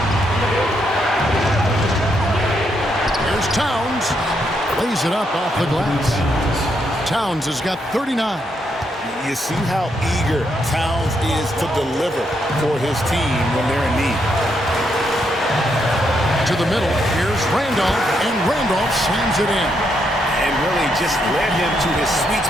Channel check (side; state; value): both; normal; correlation 0.78